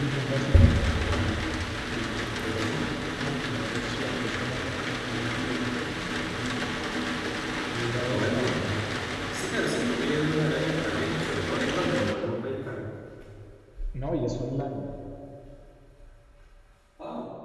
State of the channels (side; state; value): both; identical; correlation 1.00